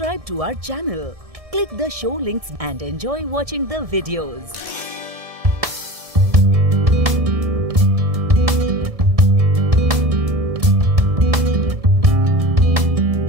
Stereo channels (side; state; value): left; late; 1.6 ms